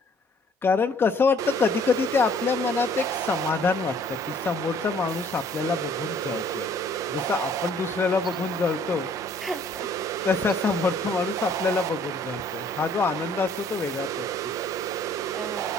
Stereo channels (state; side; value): normal; both; correlation 0.59